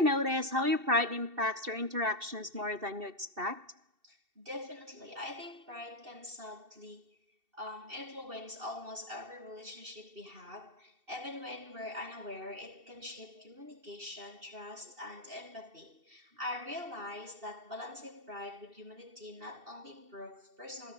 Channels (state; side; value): late; left; 2.7 ms